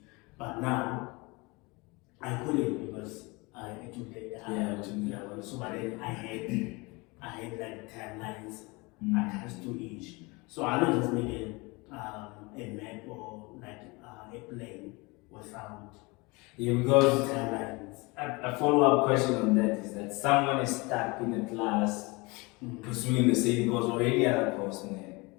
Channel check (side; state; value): right; quieter; 25.9 dB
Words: But now I couldn't because I took the so but then I had like timelines attached to each. So I don't just make a map or like a plan without because timelines. a follow-up question on that is that someone is stuck in a class pursuing the same course or any other course,